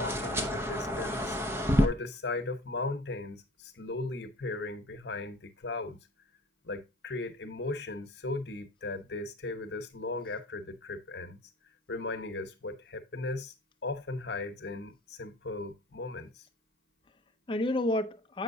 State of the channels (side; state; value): both; normal; correlation 0.47